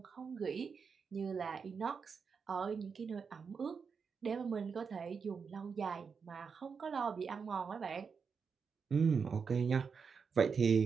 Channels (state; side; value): quieter; left; 5.8 dB